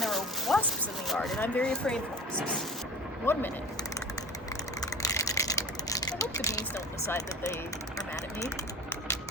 there were wasps in the yard, and I'm very afraid of wasps. 1 minute. I hope the bees don't decide that they are mad at me.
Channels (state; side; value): normal; both; correlation 0.37